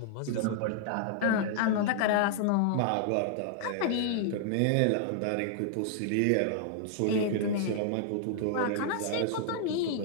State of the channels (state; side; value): different; both; correlation -0.01